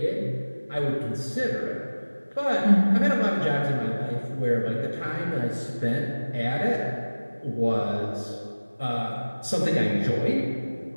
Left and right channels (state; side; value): inverted; both; correlation -1.00